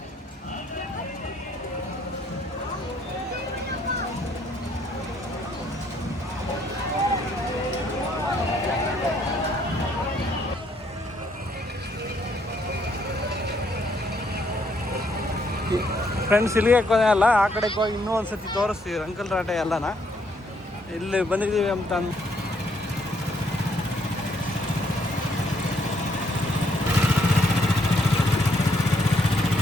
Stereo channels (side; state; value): both; normal; correlation 0.70